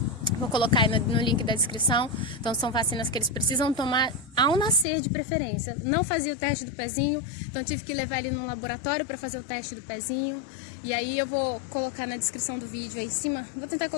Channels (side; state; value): right; drops out; at 4.9 s